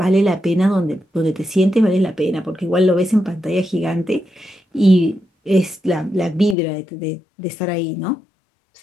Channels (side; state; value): right; drops out; at 6.6 s